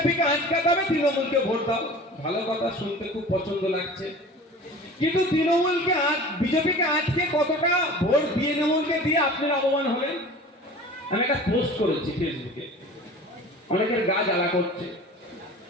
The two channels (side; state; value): both; normal; correlation 0.40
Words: আটকাতে হবে, তৃণমূলকে ভোট দাও। ভালো কথা, শুনতে খুব পছন্দ লাগছে, কিন্তু তৃণমূলকে বিজেপিকে আটকে কতটা ভোট দিয়ে তৃণমূলকে দিয়ে আপনি লাভবান হলেন? আমি একটা পোস্ট করেছি ফেসবুকে, অনেকের গা জ্বালা করছে।